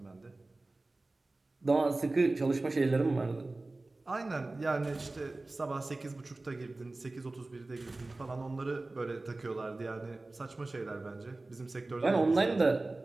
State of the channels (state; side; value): quieter; left; 3.1 dB